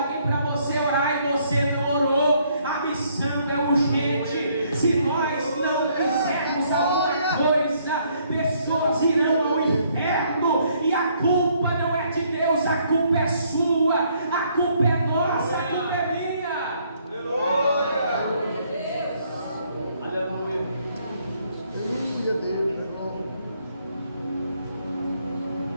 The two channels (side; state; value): both; inverted; correlation -0.68